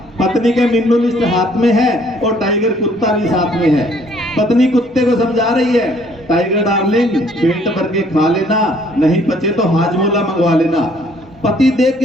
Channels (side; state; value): both; normal; correlation 0.62